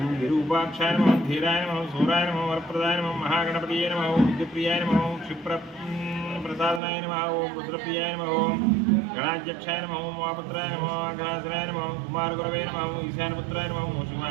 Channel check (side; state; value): left; drops out; at 6.8 s